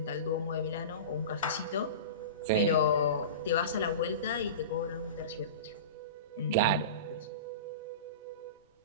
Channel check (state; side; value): inverted; both; correlation -0.30